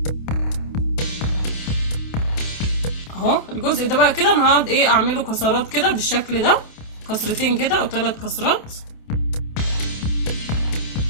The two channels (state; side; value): late; right; 28 ms